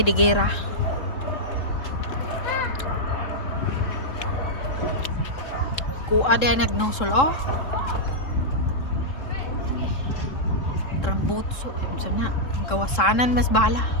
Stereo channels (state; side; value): late; right; 3.7 ms